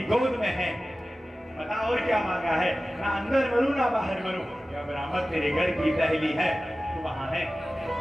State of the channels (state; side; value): normal; both; correlation 0.96